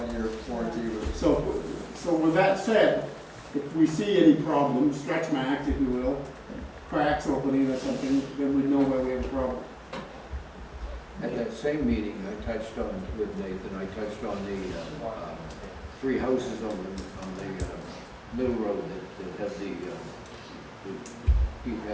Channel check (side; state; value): both; identical; correlation 1.00